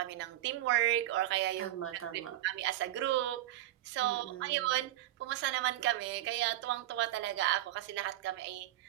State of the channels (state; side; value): quieter; left; 14.6 dB